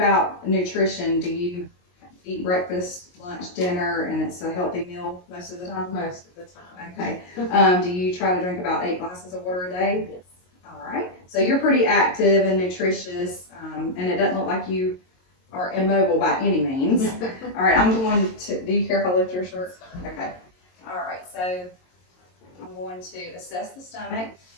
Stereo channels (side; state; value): right; late; 22 ms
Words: nutrition? Do you eat breakfast lunch, dinner, and it's a healthy meal most of the time? Most of the time. Okay. Do you try to drink about 8 glasses of water a day? Yes. All right. So you're pretty active and nutritious, and it doesn't look like you are immobile by any means. All right. I'm going to, do you care if I lift your shirt? Okay. All right. So I'm going to assess the stomach.